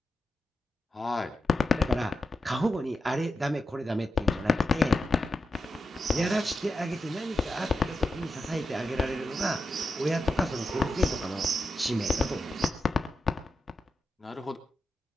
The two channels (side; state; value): both; normal; correlation 0.88